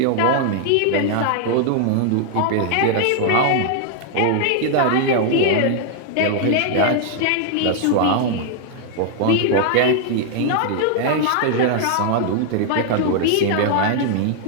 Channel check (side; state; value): both; different; correlation 0.00